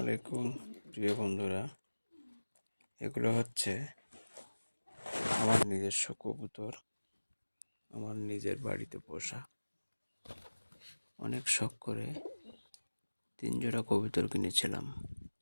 আলাইকুম প্রিয় বন্ধুরা। এগুলো হচ্ছে আমার নিজস্ব কবুতর, আমার নিজের বাড়িতে পোষা। অনেক শখ করে 3 জোড়া কবুতর কিনেছিলাম।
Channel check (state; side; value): inverted; both; correlation -1.00